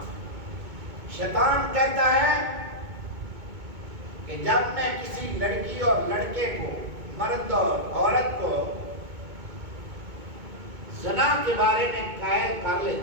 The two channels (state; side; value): late; left; 2.2 ms